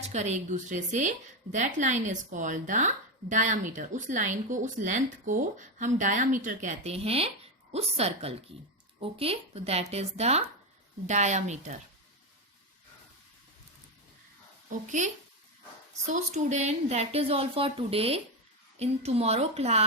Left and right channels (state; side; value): normal; both; correlation 0.11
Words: करे एक दूसरे से, that line is called the diameter. उस लाइन को, उस लेंथ को हम डायामीटर कहते हैं, उस सर्कल की. ओके, तो that is the diameter. Okay, so student, that is all for today. In tomorrow